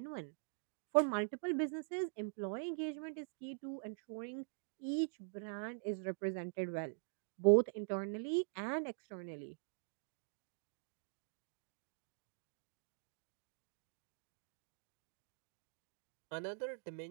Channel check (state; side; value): silent; left; digital silence